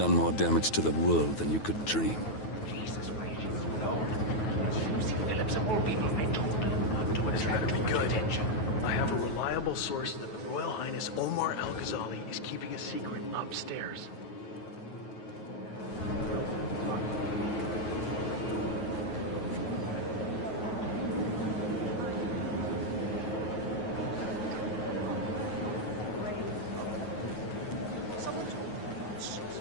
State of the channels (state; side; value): late; right; 9.4 ms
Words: more damage to the world than you could dream. Jesus, where did you know? Lucy Phillips of all people, I told her not to attract too much attention. I have a reliable source that the Royal Highness Omar Al-Ghazali is keeping a secret upstairs.